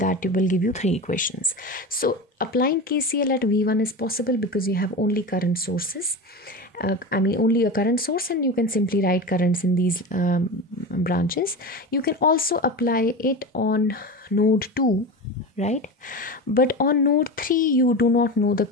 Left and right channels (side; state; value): both; normal; correlation 0.26